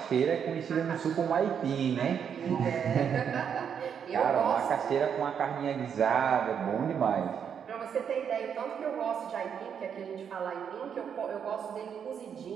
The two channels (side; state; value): left; quieter; 7.7 dB